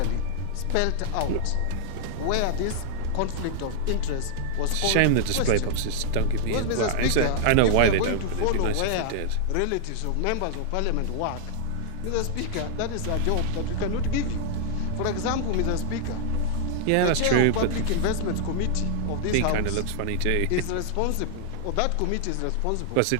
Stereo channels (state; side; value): different; both; correlation -0.01